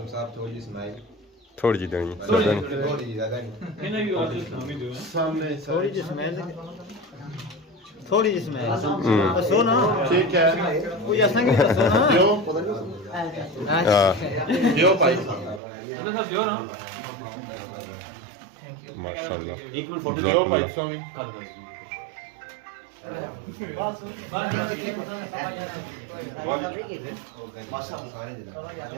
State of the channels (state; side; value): drops out; left; at 15.6 s